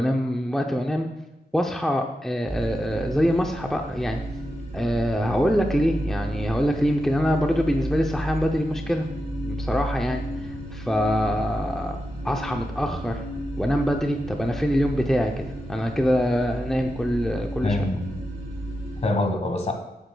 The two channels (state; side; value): normal; both; correlation 0.89